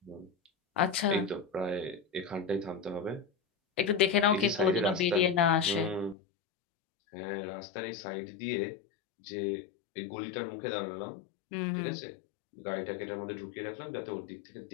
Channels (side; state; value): right; drops out; at 6.2 s